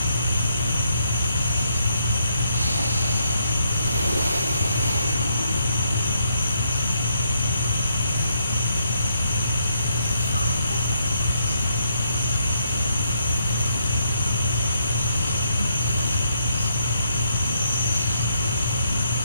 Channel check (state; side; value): inverted; both; correlation -0.75